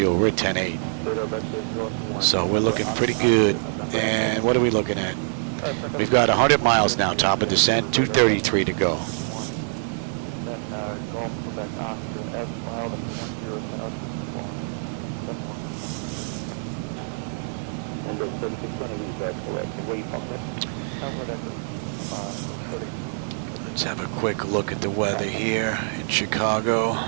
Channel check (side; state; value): left; silent; digital silence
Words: We're at 10-8. So we're looking pretty good. And what are we looking at? We've got 100 miles now, top of descent, 233 to go. Let's have a quick look at the weather here in Chicago.